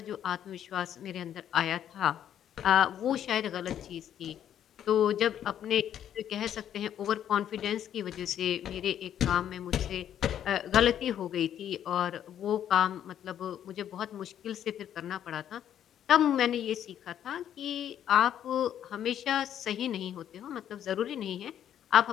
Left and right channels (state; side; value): quieter; right; 10.2 dB